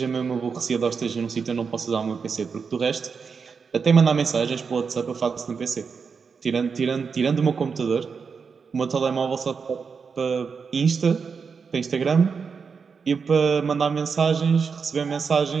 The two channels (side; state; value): left; quieter; 5.6 dB